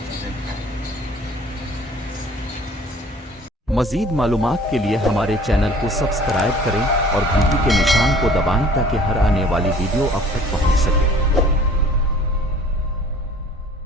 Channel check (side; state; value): both; normal; correlation 0.50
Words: दिखाएंगे। मज़ीद मालूमात के लिए हमारे चैनल को सब्सक्राइब करें और घंटी के निशान को दबाएं ताकि हर आने वाली वीडियो आप तक पहुंच सके।